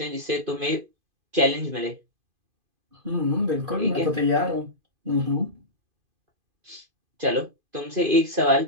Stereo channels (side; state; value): left; late; 2.5 ms